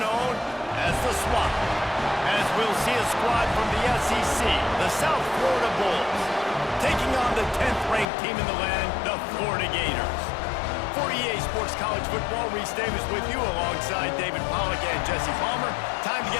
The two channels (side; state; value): right; drops out; at 8.1 s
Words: as the Swamp. As we'll see a squad from the SEC, the South Florida Bulls, taking on the 10th-ranked team in the land, the Florida Gators. For EA Sports College Football, Reese Davis with you alongside David Pollack and Jesse Palmer. Time to